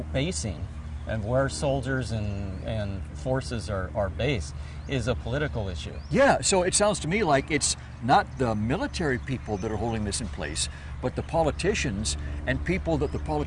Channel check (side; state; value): both; identical; correlation 1.00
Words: basing and where soldiers and forces are based is a political issue. Yeah, so it sounds to me like it's not the military people that are holding this in place, but the politicians and people that the